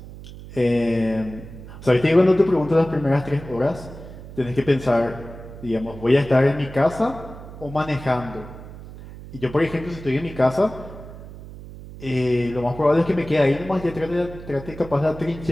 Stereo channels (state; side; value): noise; right; hum, 15 dB below the sound